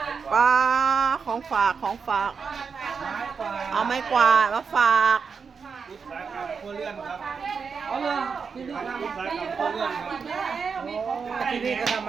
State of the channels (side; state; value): left; quieter; 5.7 dB